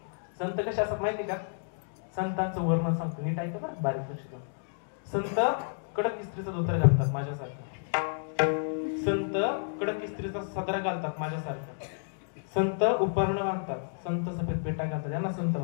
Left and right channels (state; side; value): silent; right; digital silence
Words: संत कसे असतात माहिती का? संतांचं वर्णन सांगतो, नीट ऐका ना, बारीक लक्ष द्या. संत कडक इस्त्रीचा धोतर घालतात माझ्यासारखं. संत कडक इस्त्रीचा सदरा घालतात माझ्यासारखं. संत उपर्ण घालतात. संत सफेद पेटा घालतात. यांना संत